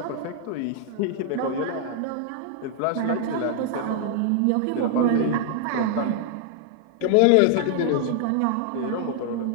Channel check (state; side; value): different; both; correlation 0.00